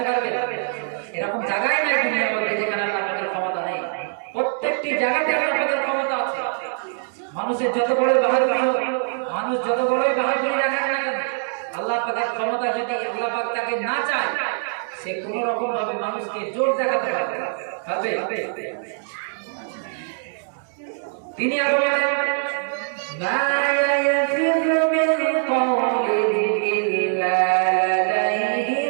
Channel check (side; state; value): left; silent; digital silence